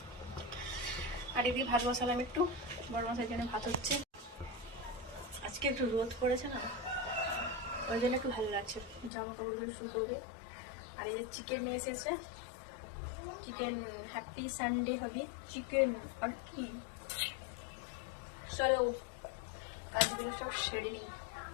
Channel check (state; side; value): drops out; right; at 9.1 s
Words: আর এদিকে ভাত বসালাম, একটু বড় মশাইয়ের জন্য ভাত হচ্ছে। আজকে একটু রোদ পড়েছে না, ওই জন্য একটু ভালো লাগছে, জামা কাপড়গুলো শুকোবে। আর এই যে চিকেন নিয়ে এসেছে, চিকেন, হ্যাপি সানডে হবে চিকেন। আর কি, চলো কাজগুলো সব সেরে নিই,